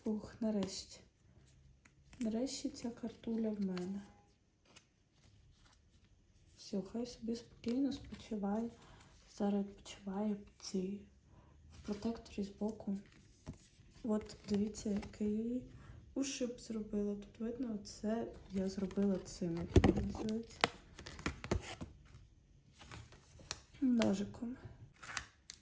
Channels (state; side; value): identical; both; correlation 1.00